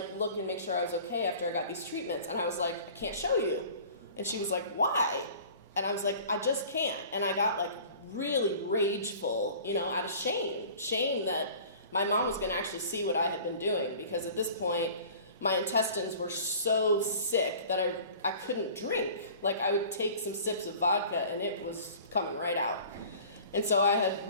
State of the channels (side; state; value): both; inverted; correlation -0.45